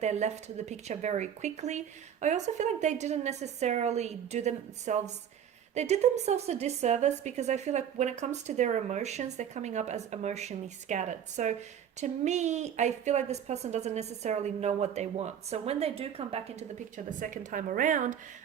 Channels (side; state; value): left; quieter; 9.0 dB